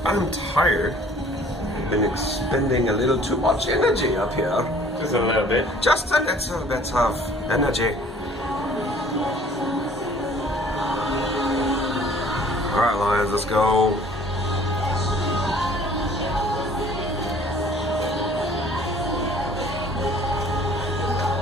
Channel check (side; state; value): both; normal; correlation 0.54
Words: I'm tired. I've been expending a little too much energy up here. Just a little bit. Just a little bit of energy. Alright, Lions, let's go.